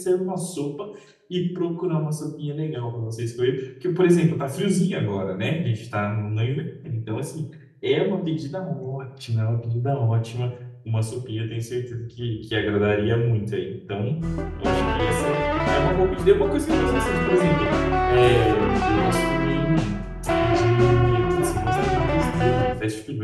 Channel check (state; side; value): identical; both; correlation 1.00